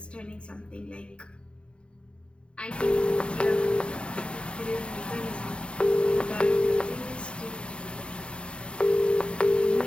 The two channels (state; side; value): late; right; 0.055 ms